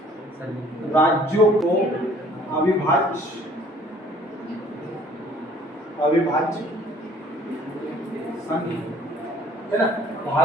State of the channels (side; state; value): both; normal; correlation 0.56